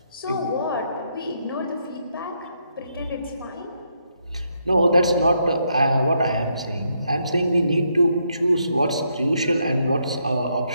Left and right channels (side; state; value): both; inverted; correlation -0.76